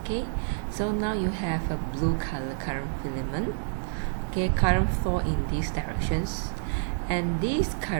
Okay, so now you have a blue color current filament. Okay, current flow in these directions, and this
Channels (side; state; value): left; silent; digital silence